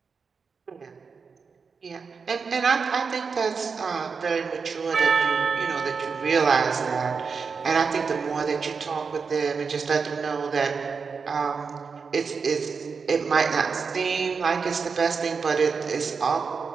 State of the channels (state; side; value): quieter; left; 5.3 dB